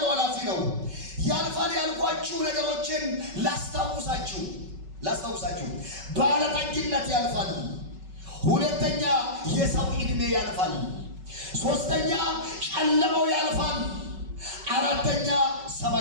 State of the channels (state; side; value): late; left; 5.3 ms